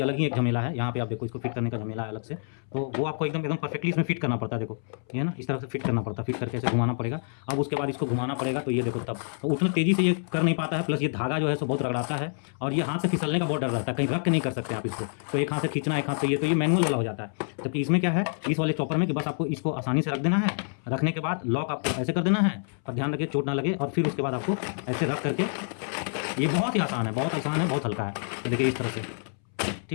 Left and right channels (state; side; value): silent; right; 60 dB below the other